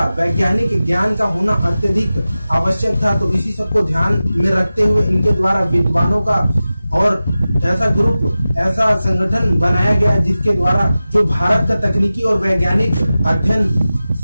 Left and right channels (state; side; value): inverted; both; correlation -0.95